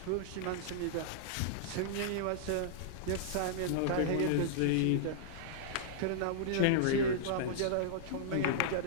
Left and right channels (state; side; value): different; both; correlation -0.02